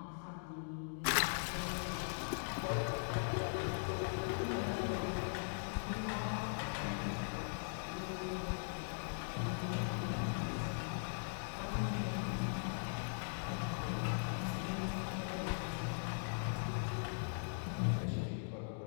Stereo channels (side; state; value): right; silent; digital silence